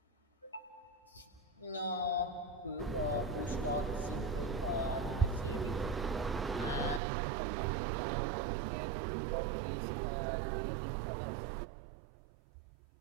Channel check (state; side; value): drops out; left; at 7.0 s